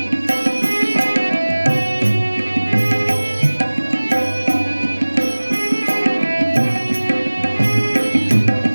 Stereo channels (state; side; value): inverted; both; correlation -1.00